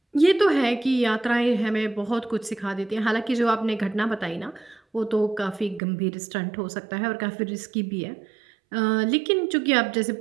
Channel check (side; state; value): left; drops out; at 5.8 s